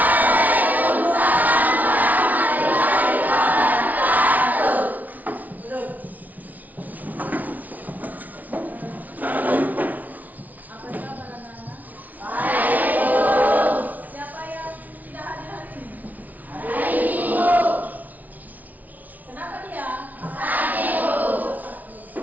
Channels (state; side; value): late; left; 0.076 ms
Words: warahmatullahi wabarakatuh. Duduk. Apa kabar anak-anak? Baik, Bu. Siapa yang tidak hadir hari ini? Baik, Bu. Kenapa dia? Sakit, Bu.